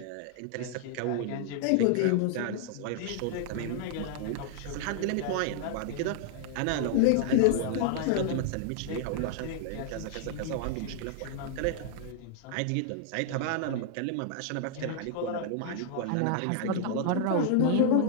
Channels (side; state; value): both; different; correlation -0.01